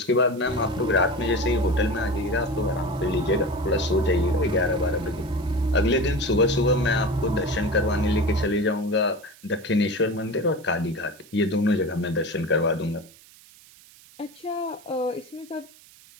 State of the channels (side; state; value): right; noise; hiss, 24 dB below the sound